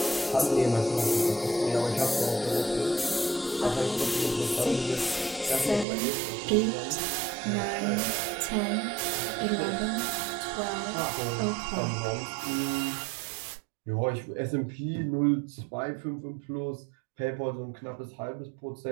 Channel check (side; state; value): left; drops out; at 5.9 s